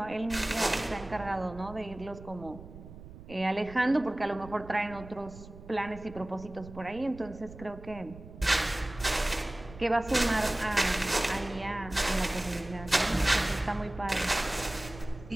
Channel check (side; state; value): right; noise; rumble, 16 dB below the sound